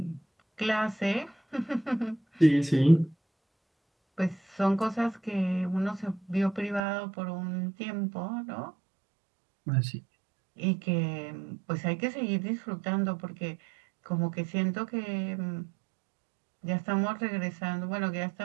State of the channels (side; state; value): left; drops out; at 6.8 s